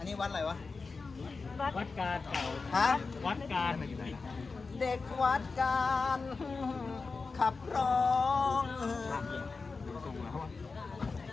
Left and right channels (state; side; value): quieter; right; 4.3 dB